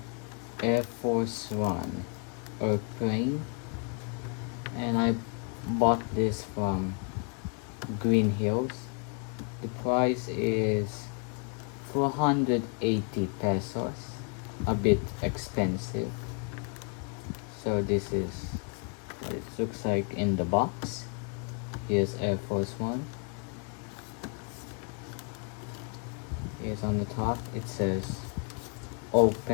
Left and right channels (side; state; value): right; quieter; 39.7 dB